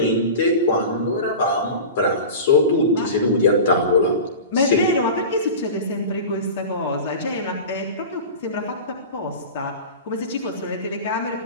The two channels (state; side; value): inverted; both; correlation -0.32